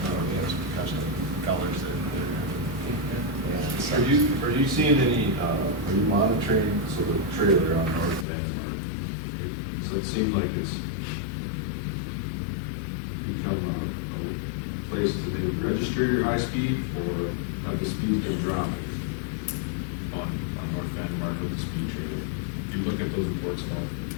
We have some custom colors that. Are you seeing any, are you monitoring, so the trailer on North Van Mark, does that seem like it's become a place to maybe register your high speed, or have the speeds been dropping on North Van Mark with the speed trailer? Do you look at those reports at all?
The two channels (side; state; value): right; drops out; at 8.2 s